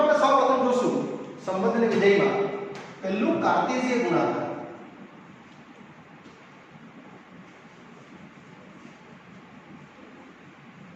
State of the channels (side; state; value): both; identical; correlation 1.00